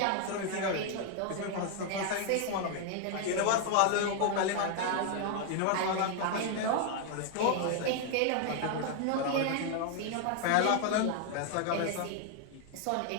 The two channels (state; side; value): different; both; correlation 0.00